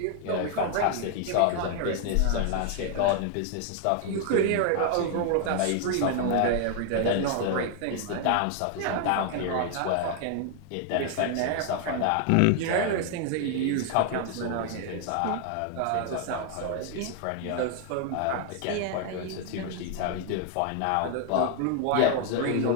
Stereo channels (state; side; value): different; both; correlation 0.00